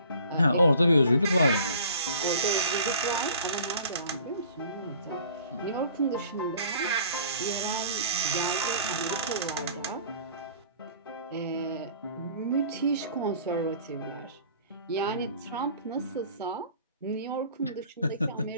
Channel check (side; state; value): both; inverted; correlation -0.49